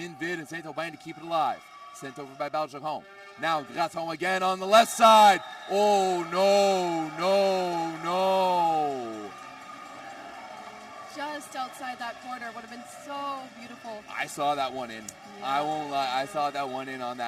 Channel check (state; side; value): identical; both; correlation 1.00